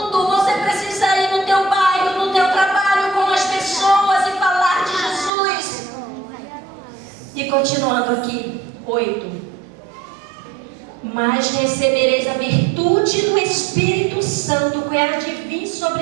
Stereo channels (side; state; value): left; drops out; at 5.3 s